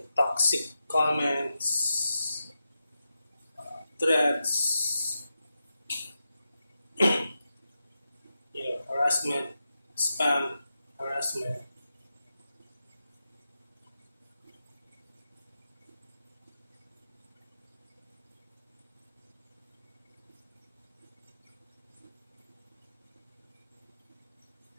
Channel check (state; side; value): inverted; both; correlation -0.89